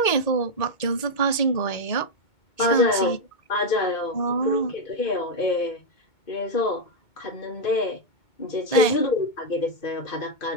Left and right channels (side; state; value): right; late; 2.2 ms